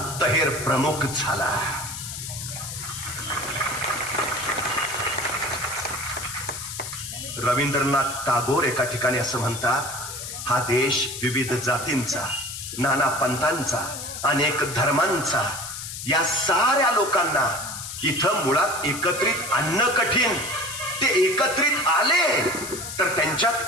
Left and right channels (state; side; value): noise; left; hiss, 8 dB below the sound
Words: प्रमुख झाला. रवींद्रनाथ टागोर एका ठिकाणी असं म्हणतात, हा देश विविध जातींचा, नाना पंथांचा, अनेक धर्मांचा, या साऱ्या लोकांना इथं मुळात एकत्रित आणणं कठीण. ते एकत्रित आले तर